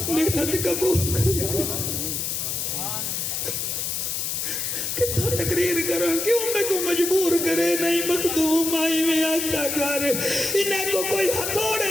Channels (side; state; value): left; noise; hiss, 2 dB below the sound